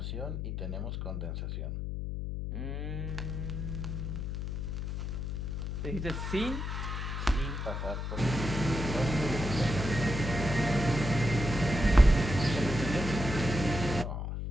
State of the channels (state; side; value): noise; left; hum, 3 dB below the sound